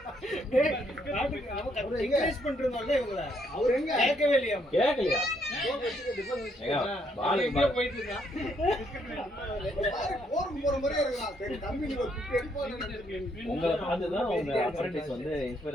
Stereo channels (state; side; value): normal; both; correlation 0.72